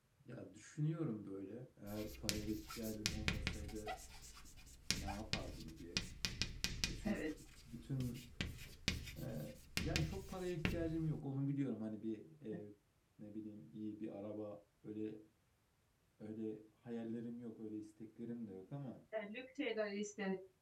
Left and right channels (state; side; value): identical; both; correlation 1.00